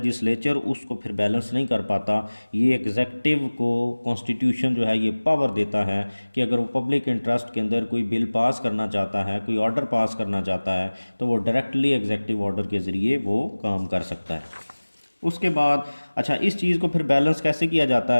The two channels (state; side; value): inverted; both; correlation -1.00